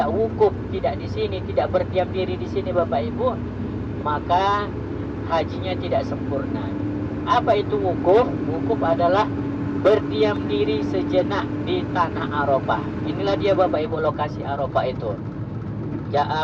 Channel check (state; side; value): identical; both; correlation 1.00